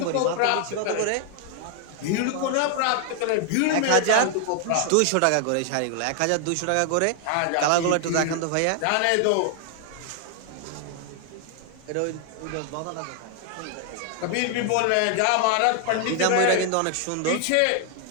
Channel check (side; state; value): both; different; correlation 0.00